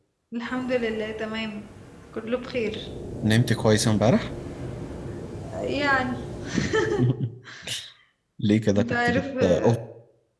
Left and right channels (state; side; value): identical; both; correlation 1.00